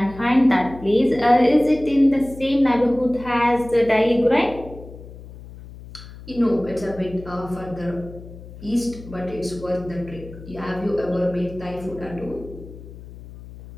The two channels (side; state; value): left; noise; hum, 16 dB below the sound